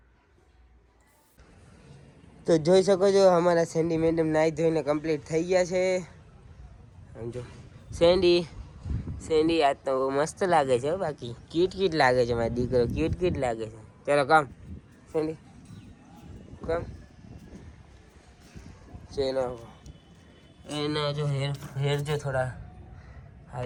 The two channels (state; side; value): identical; both; correlation 1.00